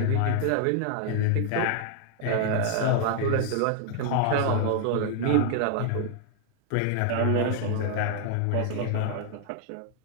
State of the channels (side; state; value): both; different; correlation 0.00